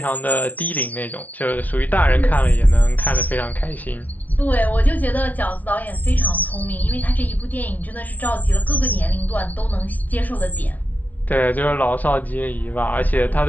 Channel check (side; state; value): right; late; 0.074 ms